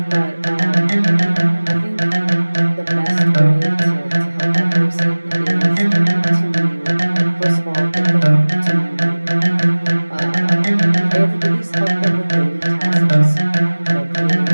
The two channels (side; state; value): both; inverted; correlation -1.00